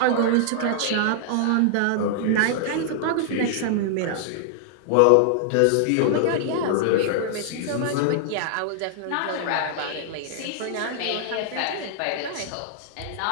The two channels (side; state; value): both; different; correlation -0.01